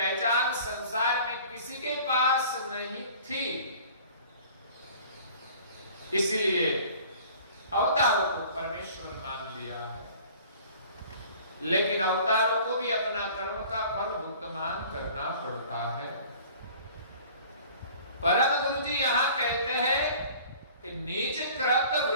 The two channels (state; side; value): inverted; both; correlation -0.48